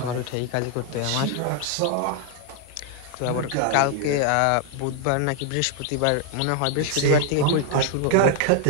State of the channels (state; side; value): different; both; correlation 0.00